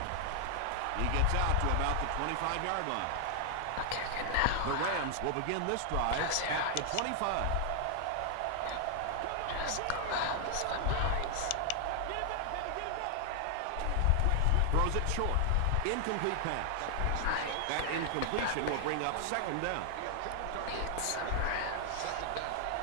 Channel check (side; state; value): both; different; correlation 0.00